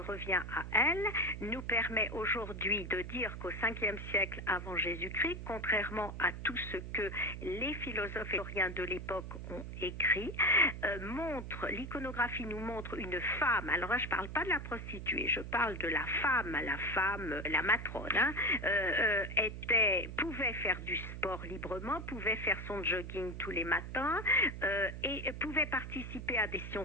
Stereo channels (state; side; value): noise; right; hum, 8 dB below the sound